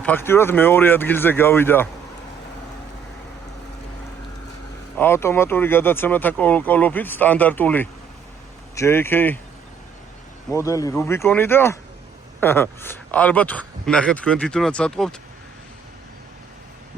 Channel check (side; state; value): left; quieter; 6.8 dB